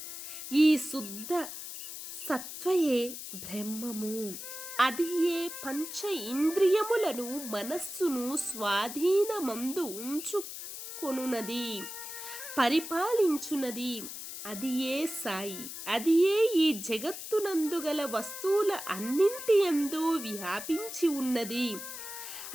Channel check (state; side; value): noise; left; hiss, 9 dB below the sound